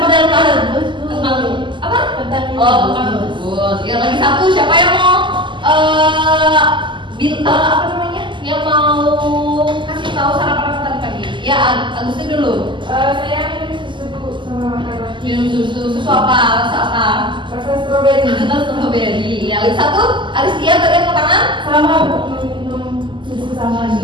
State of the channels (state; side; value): late; left; 0.24 ms